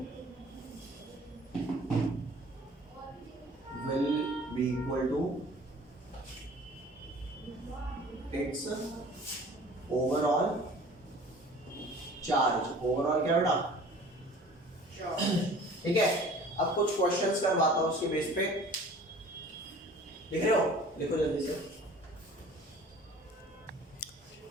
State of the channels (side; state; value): both; normal; correlation 0.47